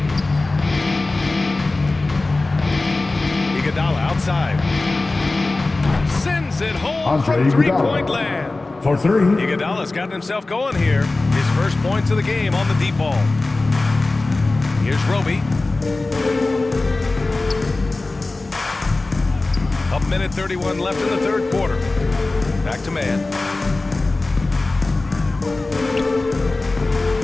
Iguodala outside. Sends it home Andre from three-point Iguodala. land. For 3. Iguodala's gotten himself going here. His first points of the game on the deep ball. Here's Roby. A minute 31 left in the third quarter. Back to man.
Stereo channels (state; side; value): quieter; right; 3.2 dB